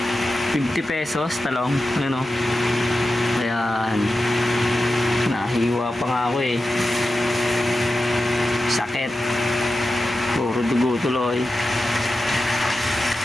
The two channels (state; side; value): normal; both; correlation 0.92